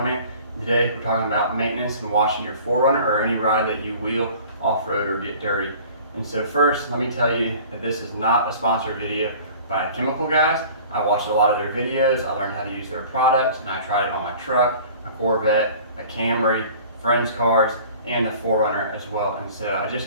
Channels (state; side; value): inverted; both; correlation -0.46